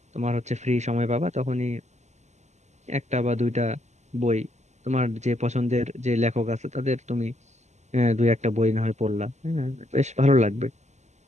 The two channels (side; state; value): left; late; 0.33 ms